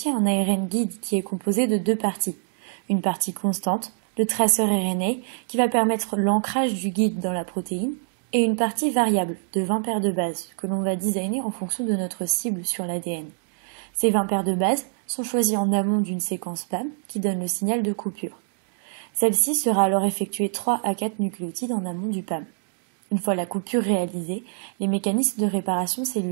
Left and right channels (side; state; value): left; silent; digital silence